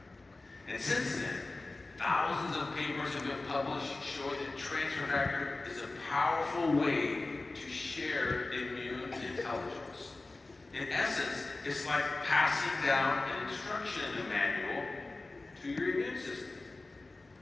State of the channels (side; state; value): right; quieter; 3.2 dB